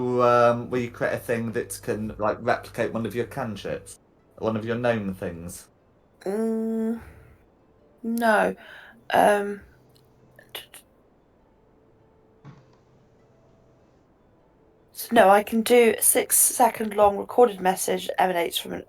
create a thing that can like replicate one of your cantrips, one of your known things? No. So no, I can do a 6-second long recorded message that emanates an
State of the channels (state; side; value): identical; both; correlation 1.00